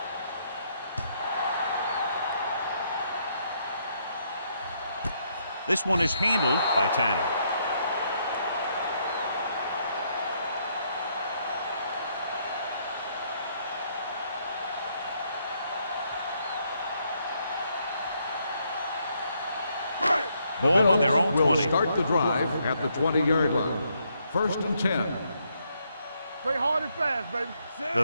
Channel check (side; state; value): both; inverted; correlation -0.74